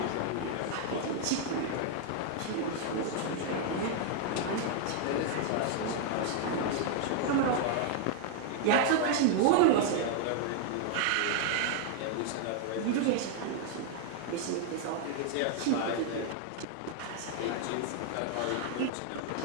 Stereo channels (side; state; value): both; different; correlation 0.00